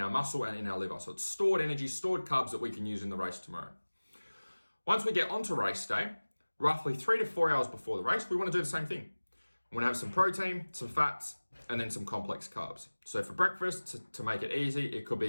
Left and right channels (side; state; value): both; inverted; correlation -1.00